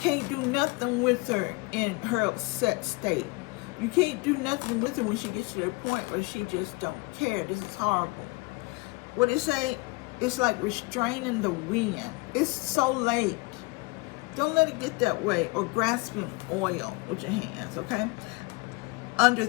do nothing with her in her upset state. You can't do nothing with her when she gets to the point where she just don't care. This is horrible. What it say? It's like restraining the wind. It's so late. Don't let it get that way. Or grasping oil with your hands, okay? Under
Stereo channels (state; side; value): quieter; right; 26.9 dB